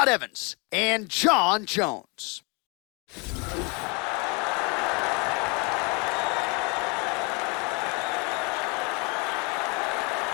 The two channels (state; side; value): quieter; right; 29.8 dB